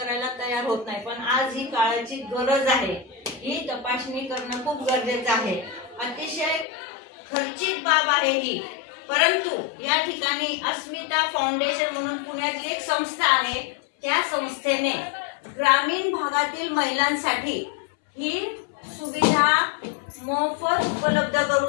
तयार होत नाही। पण आज ही काळाची गरज आहे, ही तपासणी करणं खूप गरजेचं आहे। अतिशय खर्चिक बाब आहे ही, परंतु या ठिकाणी अस्मिता फाउंडेशन म्हणून पुण्यातली एक संस्था आहे, त्या संस्थेने ग्रामीण भागातील महिलांसाठी ही सुविधा मोफत उपलब्ध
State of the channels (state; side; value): drops out; right; at 6.7 s